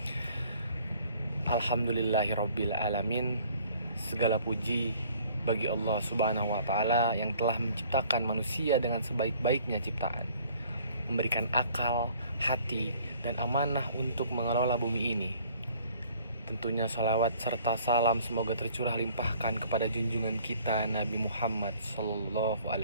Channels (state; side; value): inverted; both; correlation -0.56